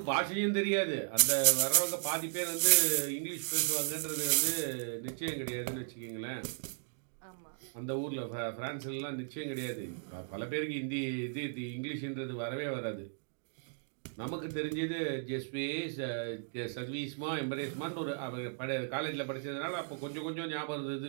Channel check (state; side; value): silent; left; digital silence